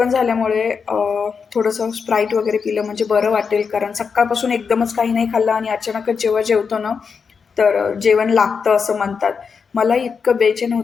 झाल्यामुळे थोडंसं स्प्राईट वगैरे पिलं म्हणजे बरं वाटेल, कारण सकाळपासून एकदमच काही नाही खाल्लं आणि अचानकच जेव्हा जेवतो ना तर जेवण लागतं असं म्हणतात. मला इतकं बेचैन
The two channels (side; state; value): right; quieter; 5.8 dB